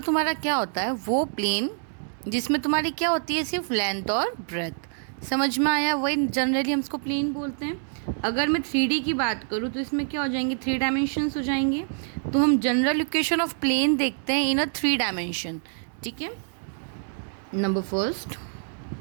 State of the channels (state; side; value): silent; left; 61 dB below the other